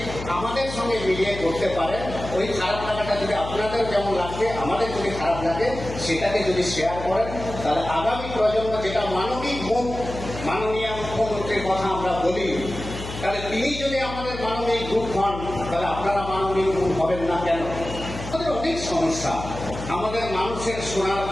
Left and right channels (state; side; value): noise; left; hum, 9 dB below the sound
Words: আমাদের সঙ্গে মিলিয়ে করতে পারেন, ওই খারাপ লাগাটা যদি আপনাদের যেমন লাগবে আমাদের যদি খারাপ লাগে, সেটাকে যদি শেয়ার করেন, তাহলে আগামী প্রজন্ম যেটা মানবিক মুখ, মাননীয় মুখ্যমন্ত্রীর কথা আমরা বলি, তাহলে তিনি যদি আমাদের মানবিক রূপ হন, তাহলে আপনারা মানবিক রূপ হবেন না কেন? আমাদের অনেক সমস্যা, আমাদের মানুষের শোনার